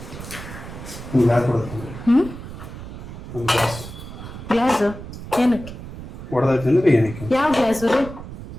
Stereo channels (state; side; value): noise; right; rumble, 12 dB below the sound